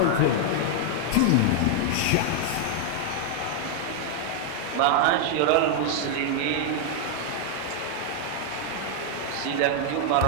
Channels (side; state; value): both; different; correlation 0.00